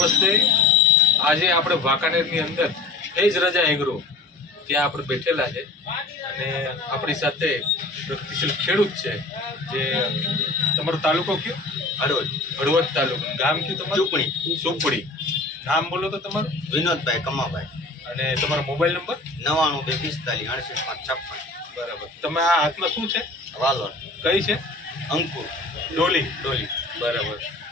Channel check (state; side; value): quieter; right; 3.2 dB